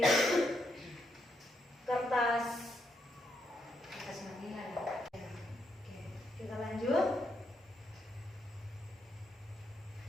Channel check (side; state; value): both; normal; correlation 0.79